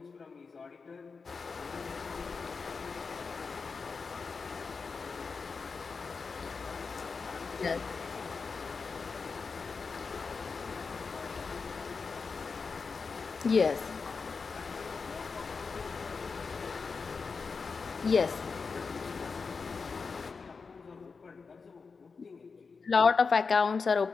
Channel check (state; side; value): quieter; right; 4.9 dB